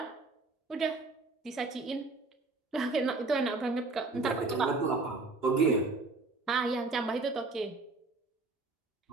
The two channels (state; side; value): quieter; left; 3.5 dB